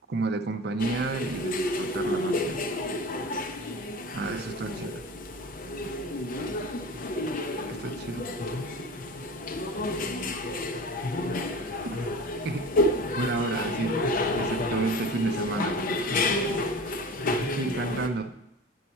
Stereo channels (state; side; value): normal; both; correlation 0.35